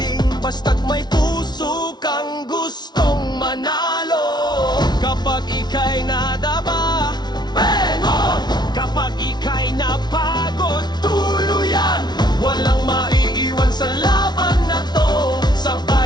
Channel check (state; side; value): late; right; 0.20 ms